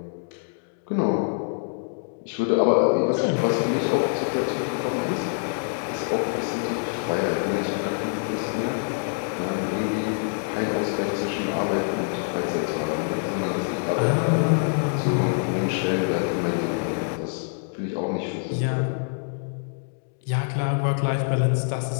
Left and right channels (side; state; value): right; silent; 61 dB below the other